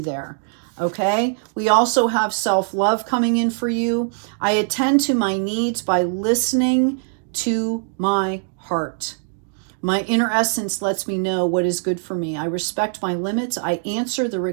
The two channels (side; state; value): left; silent; digital silence